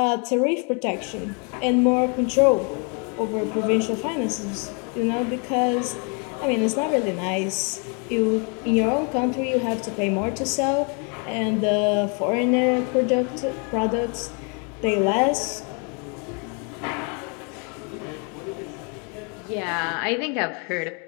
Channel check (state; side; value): quieter; right; 36.0 dB